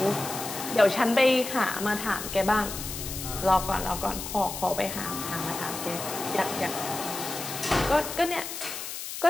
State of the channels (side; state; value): left; noise; hiss, 7 dB below the sound